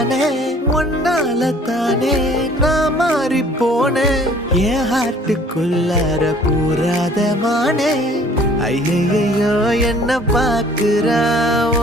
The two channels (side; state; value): both; normal; correlation 0.54